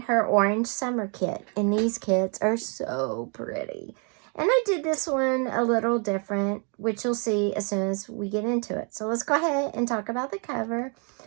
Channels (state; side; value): quieter; left; 37.0 dB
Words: her Orange Summer kit. And these kits are so pretty. And I did this one a little different, which you'll see as soon as we get into it. So let's go ahead and talk about the cover.